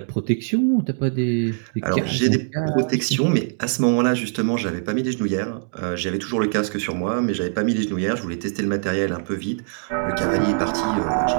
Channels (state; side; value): silent; left; digital silence